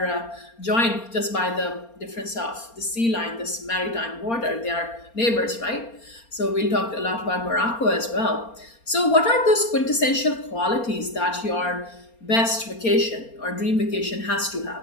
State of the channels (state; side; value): late; right; 4.3 ms